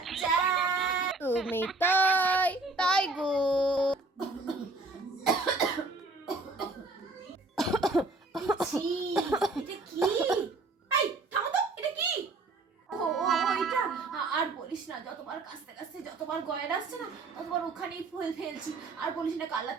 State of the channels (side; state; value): left; quieter; 3.4 dB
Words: তুমি তাই তাই গো। ছি, এটা কি? এই থামো তো, এটা কি? ও ও এটা আর বলিস না, যতবার কাছতে কাছতে যতবার গয়না আসছে না ততবার ওখানেই ফুল ফেলছি। আর বলিস না, কাল